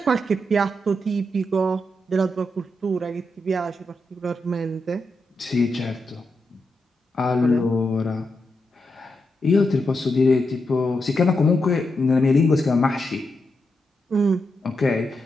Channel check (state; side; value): normal; both; correlation 0.85